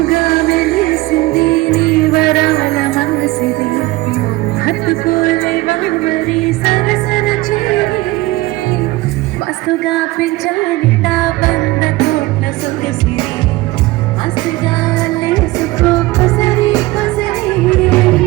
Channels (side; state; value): left; quieter; 19.5 dB